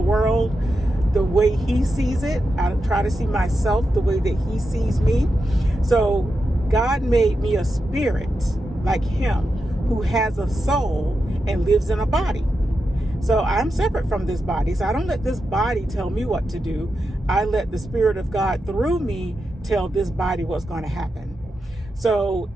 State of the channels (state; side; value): normal; both; correlation 0.88